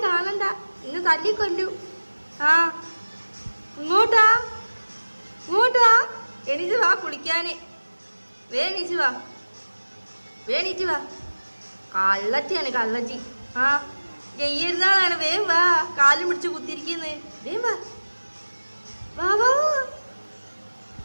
കാണണ്ട, ഇന്ന് തല്ലിക്കൊല്ലു. ഇങ്ങോട്ടാ എണീച്ച് വാ കുളിക്കാന്. വേണീച്ച് വാ. കള്ളറ്റിയാണ് കള്ളറ്റി. ജയ്യരുന്നാളാണ്. വേം വാ, കാലും പിടിച്ച് കുത്തിരിക്കുന്നു. വേം വാ.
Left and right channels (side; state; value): both; inverted; correlation -1.00